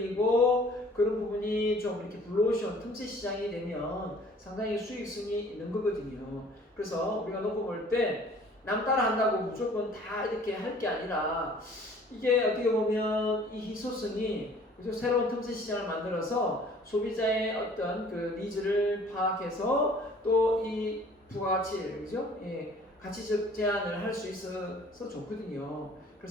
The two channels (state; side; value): normal; both; correlation 0.52